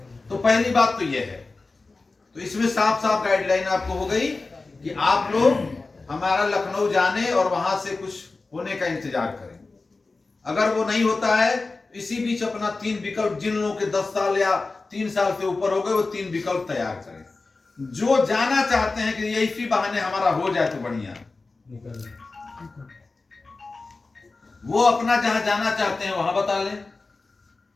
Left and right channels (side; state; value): right; quieter; 3.7 dB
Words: तो पहली बात तो यह है, तो इसमें साफ साफ गाइडलाइन आपको हो गई कि आप लोग हमारा लखनऊ जाने और वहां से कुछ होने का इंतजार करें। अगर वो नहीं होता है, इसी बीच अपना 3 विकल्प, जिन लोगों के 10 साल या 3 साल से ऊपर हो गए, वो 3 विकल्प तैयार करें। जो जाना चाहते हैं कि ये इसी बहाने हमारा हो जाए तो बढ़िया, वो अपना जहां जाना चाहते हैं वहां बता लें।